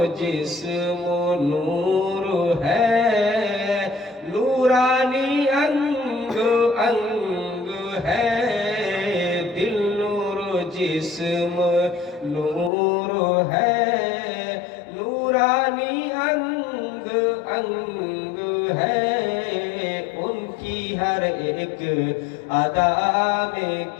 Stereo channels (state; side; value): drops out; right; at 12.7 s